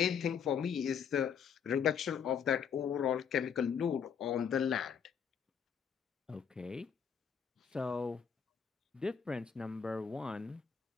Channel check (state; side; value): quieter; right; 7.2 dB